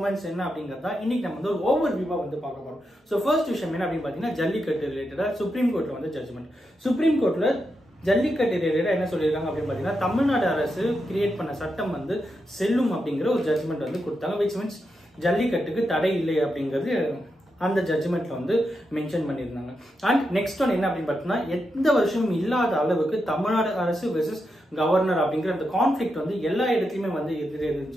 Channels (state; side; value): normal; both; correlation 0.86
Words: என்ன அப்படிங்கறத இன்னைக்கு நம்ம வந்து ஒரு ஓவர் வியூவா வந்து பார்க்க போறோம். ஸோ ஃபர்ஸ்ட் விஷயம் என்ன அப்படின்னு பார்த்தீங்கன்னா, ஜல்லிக்கட்டு ரிலேட்டடா சுப்ரீம் கோர்ட்ல வந்து ஜட்ஜ்மெண்ட். சுப்ரீம் கோர்ட்ல ஜல்லிக்கட்டு ரிலேட்டடா என்ன சொல்லியிருக்காங்க அப்படின்னு பார்த்தீங்கன்னா, தமிழ்நாடு அரசு கிரியேட் பண்ண சட்டம் வந்து செல்லும் அப்படிங்கிற ஒரு ஜட்ஜ்மெண்ட் வந்து கொடுத்தாங்க. விச் மீன்ஸ் ஜல்லிக்கட்டுக்கு தடை இல்லை அப்படிங்கிறது அந்த ஜட்ஜ்மெண்ட்ல வந்து மென்ஷன் பண்ணியிருந்தாங்க. அண்ட் நெக்ஸ்ட் ஒன் என்ன அப்படின்னு பார்த்தீங்கன்னா, எந்த வருஷமும் இல்லாத அளவுக்கு தமிழ்நாடு அரசு வெர்சஸ் கவர்னர் அப்படிங்கிற அந்த கான்ஃபிளிக்ட் வந்து எல்லா இடத்துலையுமே வந்து இருக்குன்னு